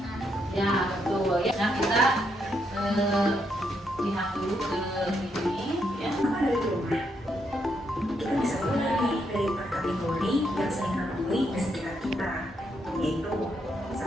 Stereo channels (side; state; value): both; normal; correlation 0.78